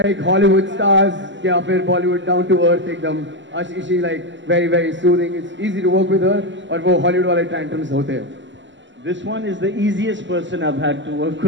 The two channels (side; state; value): left; late; 0.54 ms